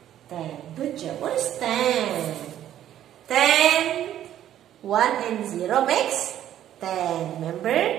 10. Good job. What is 10? 10, 1 and 0 makes 10.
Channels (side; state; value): left; quieter; 11.6 dB